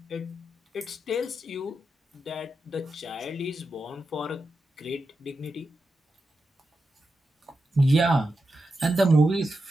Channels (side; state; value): both; normal; correlation 0.89